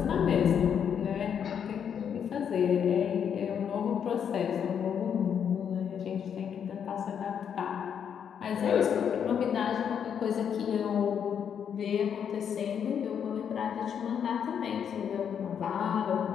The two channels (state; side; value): quieter; right; 8.0 dB